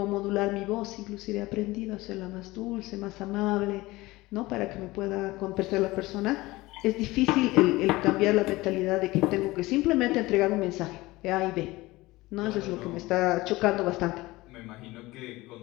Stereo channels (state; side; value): quieter; right; 19.9 dB